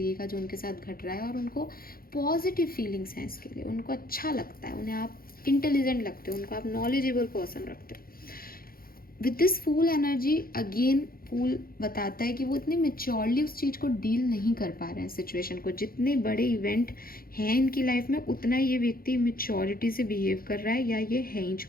का जो उनके साथ घट रहा है, और उनको पॉजिटिव फीलिंग्स हैं इसके लिए, उनको अच्छा लगता है, उन्हें आप इंटेलिजेंट लगते हो, उनको आप नॉलेजेबल पर्सन रखते हो। With this fool energy again, fool बताता है कि वो इतने मेच्योरली उस चीज़ को डील नहीं कर पा रहे हैं, सिचुएशन को। जितने बड़े इवेंट हैं इनकी लाइफ में, उतना ये व्यक्ति मेच्योरिटी से बिहेव कर रहा है, या ये है ही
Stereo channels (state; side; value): late; right; 0.43 ms